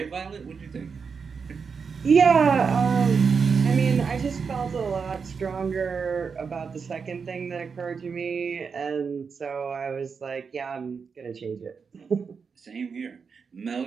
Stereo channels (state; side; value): quieter; left; 5.7 dB